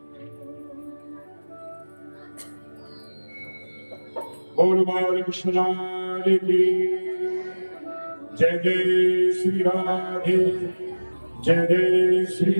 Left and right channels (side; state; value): both; inverted; correlation -1.00